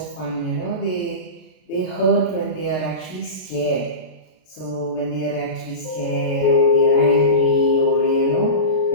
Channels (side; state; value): right; late; 33 ms